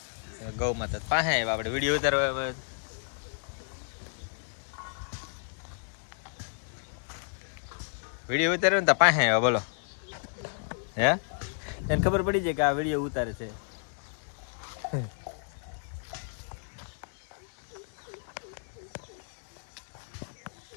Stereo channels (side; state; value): right; silent; digital silence